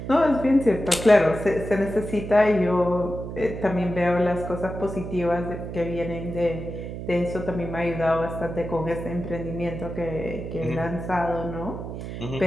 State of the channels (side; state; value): right; noise; hum, 8 dB below the sound